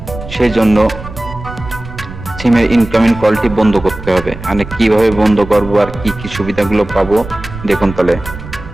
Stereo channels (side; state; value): right; noise; rumble, 12 dB below the sound